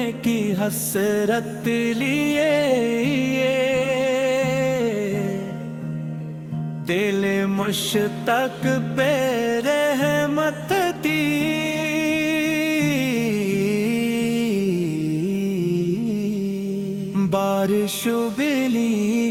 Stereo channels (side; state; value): both; identical; correlation 1.00